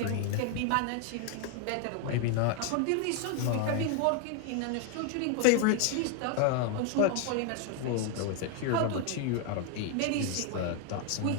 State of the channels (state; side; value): different; both; correlation 0.01